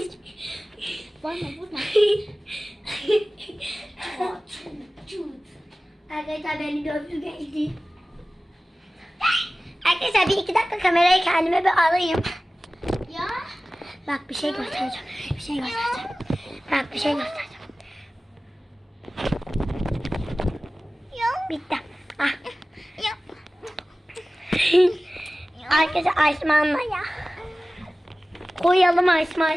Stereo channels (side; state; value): both; normal; correlation 0.97